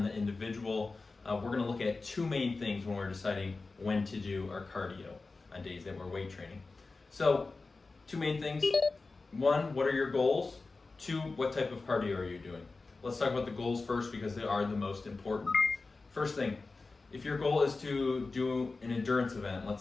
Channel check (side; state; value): right; quieter; 3.8 dB